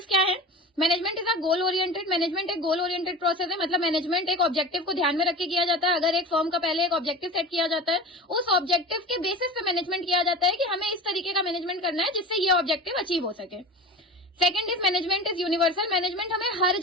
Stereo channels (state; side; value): normal; both; correlation 0.33